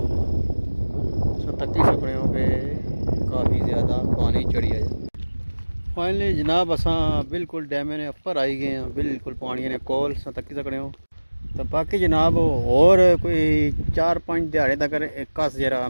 तत्ती सकड़ियों पे काफ़ी ज़्यादा पानी चढ़ी है। फाइनली जनाब असा बिल्कुल डैम ने उपर आई गए हैं, बिल्कुल पानी ने कोल तत्ती सकड़ियों। तो बाकी जनाब और कोई 4-5 दिहाड़े तक कस जरा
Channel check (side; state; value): both; inverted; correlation -1.00